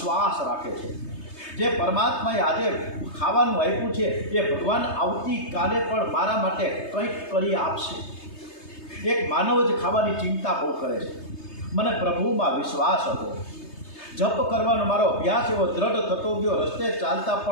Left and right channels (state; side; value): late; right; 3.3 ms